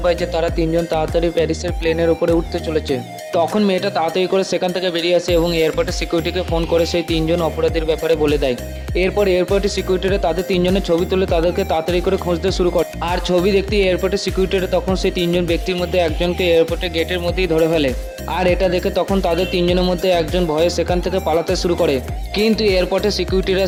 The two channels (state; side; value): identical; both; correlation 1.00